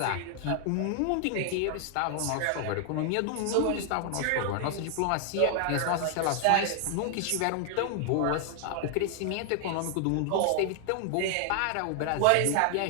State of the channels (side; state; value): both; different; correlation 0.00